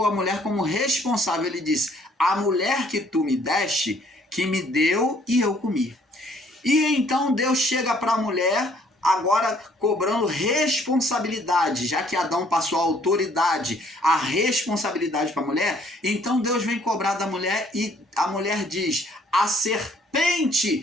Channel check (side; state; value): both; normal; correlation 0.62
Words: a mulher como responsável, ele disse, a mulher que tu me deste, que me deu e eu comi. E então Deus chega para a mulher, agora cobrando responsabilidade, já que Adão passou a autoridade, a responsabilidade para a mulher, então Deus vem cobrar da mulher e a mulher diz, a